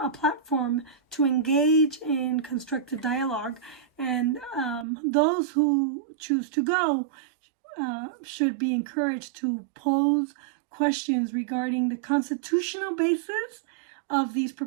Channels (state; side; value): drops out; left; at 4.9 s